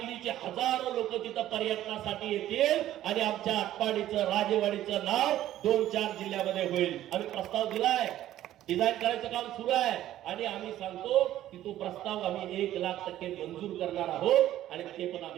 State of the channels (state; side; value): quieter; left; 13.1 dB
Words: हजारो लोक तिथं पर्यटनासाठी येतील आणि आमच्या आटपाडीचं राजेवाडीचं नाव 2-4 जिल्ह्यामध्ये होईल. आम्ही प्रस्ताव दिलाय, डिझाईन करायचं काम सुरू आहे आणि आम्ही सांगतो की तो प्रस्ताव आम्ही 1,00,000% मंजूर करणार आहोत आणि ते पण